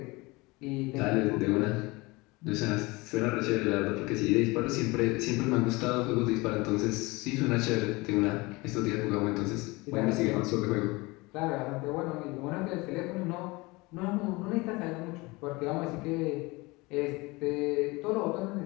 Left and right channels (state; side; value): quieter; right; 23.7 dB